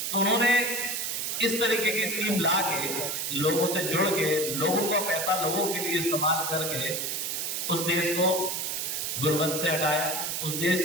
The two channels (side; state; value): right; noise; hiss, 1 dB below the sound